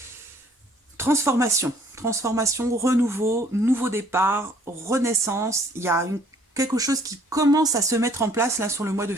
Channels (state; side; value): normal; both; correlation 0.60